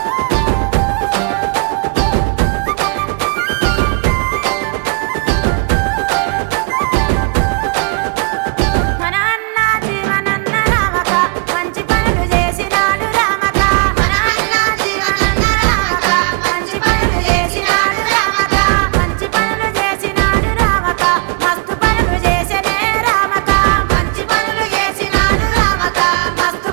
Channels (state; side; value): quieter; left; 35.5 dB